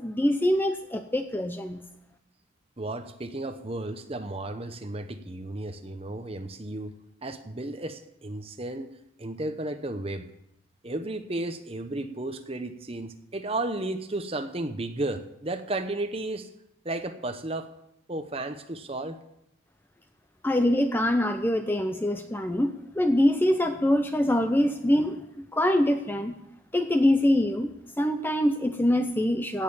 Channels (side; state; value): both; normal; correlation 0.83